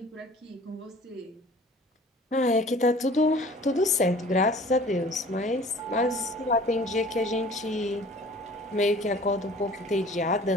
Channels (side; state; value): both; normal; correlation 0.48